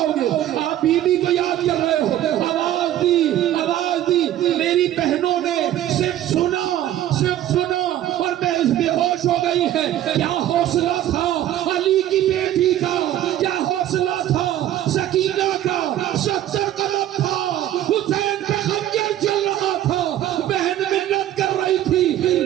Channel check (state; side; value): quieter; left; 12.5 dB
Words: گے؟ آپ بی بی کو یاد کر رہے ہو، آواز دی، میری بہنوں نے صرف سنا اور بے ہوش ہو گئی ہے۔ کیا حوصلہ تھا علی کی بیٹی کا، کیا حوصلہ تھا سکینہ کا، 70 قدم تھا، حسین پہ خنجر چل رہا تھا، بہن منت کر رہی تھی،